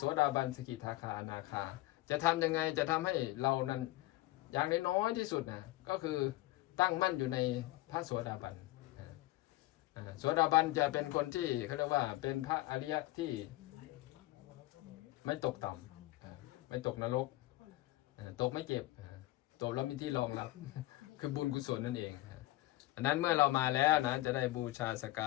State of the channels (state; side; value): quieter; right; 18.0 dB